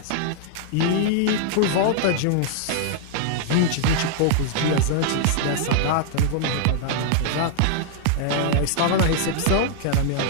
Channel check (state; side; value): different; both; correlation -0.01